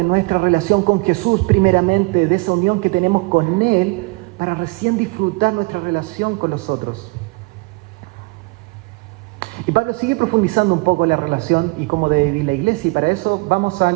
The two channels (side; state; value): left; quieter; 27.4 dB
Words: nuestra relación con Jesús primeramente, de esa unión que tenemos con Él, para recién disfrutar nuestra relación con los otros. Y Pablo sigue profundizando un poco la relación y cómo debe vivir la iglesia, y para eso vamos